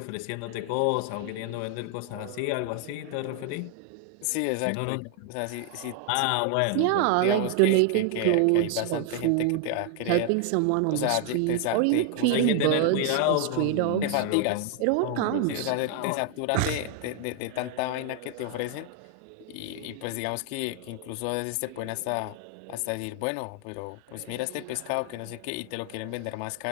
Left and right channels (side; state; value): both; different; correlation 0.00